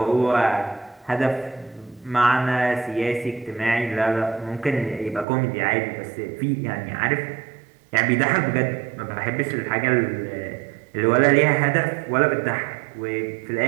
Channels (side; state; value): left; drops out; at 5.2 s